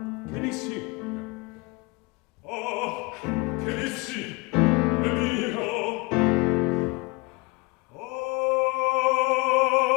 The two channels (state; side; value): quieter; right; 26.3 dB